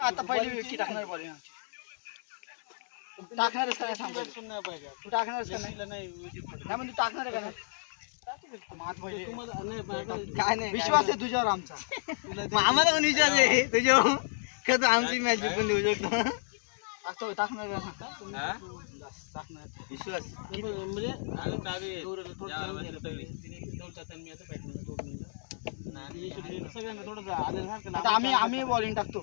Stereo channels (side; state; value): right; silent; 57 dB below the other